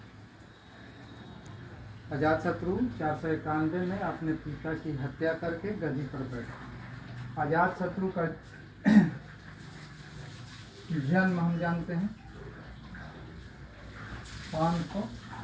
अजातशत्रु 491 में अपने पिता की हत्या करके गद्दी पर बैठे। अजातशत्रु का जन्म हम जानते हैं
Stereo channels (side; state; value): both; identical; correlation 1.00